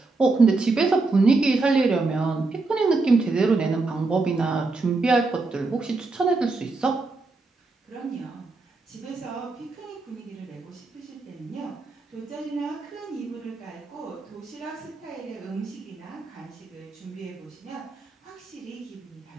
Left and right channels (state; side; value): quieter; left; 3.6 dB